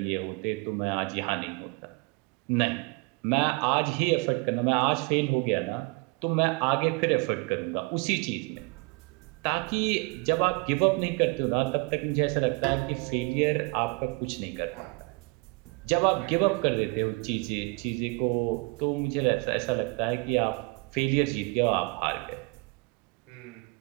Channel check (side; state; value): left; quieter; 28.7 dB